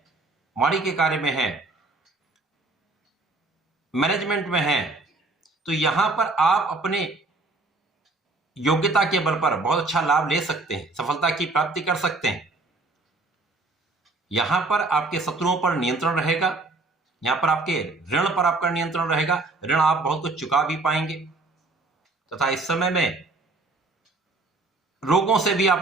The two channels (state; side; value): quieter; left; 3.3 dB